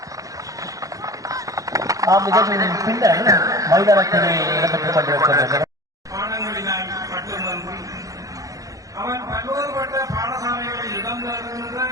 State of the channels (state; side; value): late; left; 0.17 ms